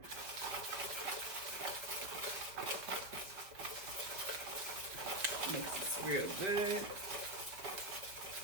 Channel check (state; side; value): late; left; 5.1 ms